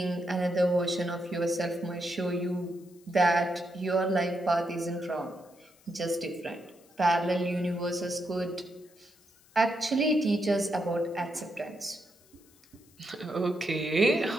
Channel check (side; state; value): left; noise; hiss, 29 dB below the sound